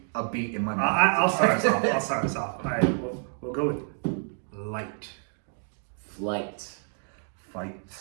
a beat in my mind. I'll start us off. All right, we'll go with light, Flight. Fight.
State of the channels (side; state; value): left; silent; 59 dB below the other